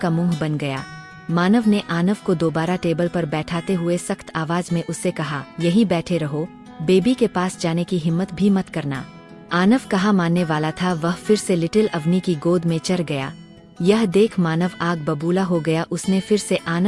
का मुंह बन गया। मानव ने आनव को दोबारा टेबल पर बैठाते हुए सख्त आवाज में उससे कहा, यहीं बैठे रहो, बेबी के पास जाने की हिम्मत भी मत करना। आनव कहा मानने वाला था, वह फिर से लिटिल अवनी की गोद में चढ़ गया। यह देख मानव आग बबूला हो गया। उसने फिर से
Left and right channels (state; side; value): identical; both; correlation 1.00